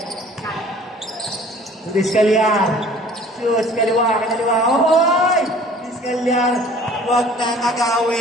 Diskalyan. Shoes, kaliwa. Oy! Diskalyan. Huwag na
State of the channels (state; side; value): normal; both; correlation 0.50